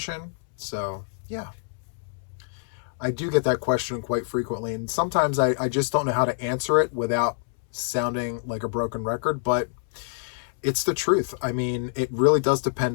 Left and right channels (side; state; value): right; silent; 61 dB below the other